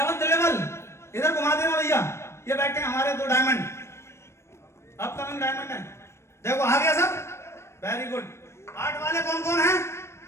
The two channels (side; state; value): right; late; 0.13 ms